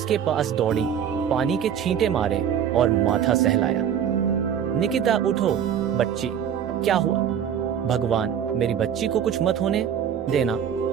पास दौड़ी, पानी के छींटे मारे और माथा सहलाया। निकिता, उठो बच्ची, क्या हुआ? भगवान, मेरी बच्ची को कुछ मत होने देना।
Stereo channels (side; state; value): left; quieter; 8.8 dB